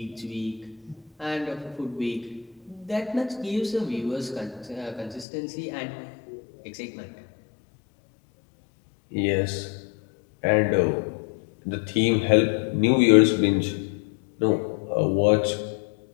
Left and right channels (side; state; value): right; drops out; at 5.2 s